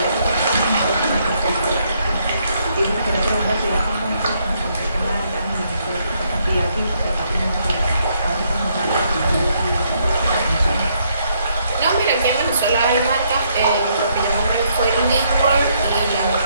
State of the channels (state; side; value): inverted; both; correlation -0.72